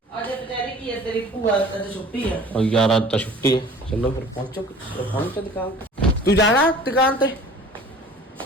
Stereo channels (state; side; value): normal; both; correlation 0.47